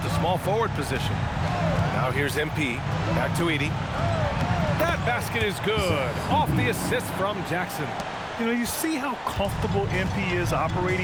the small forward position. Now here's MP. Back to Edey. That basket is good. Off the assist from Jackson. You know, you see how comfortable MP is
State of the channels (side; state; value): both; identical; correlation 1.00